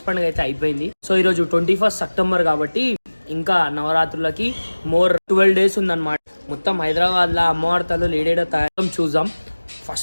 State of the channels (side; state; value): both; inverted; correlation -1.00